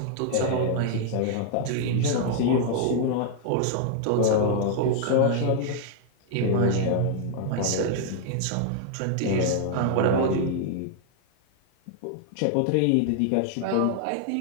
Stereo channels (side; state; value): both; different; correlation 0.00